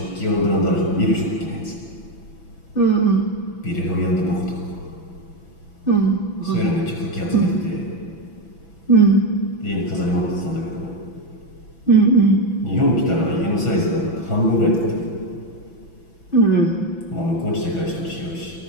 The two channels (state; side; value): late; right; 6.0 ms